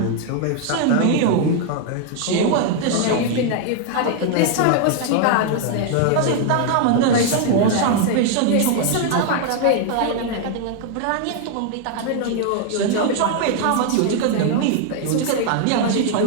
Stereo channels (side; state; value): both; different; correlation 0.00